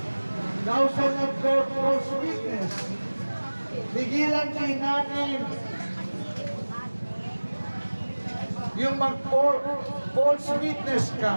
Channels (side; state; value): both; inverted; correlation -1.00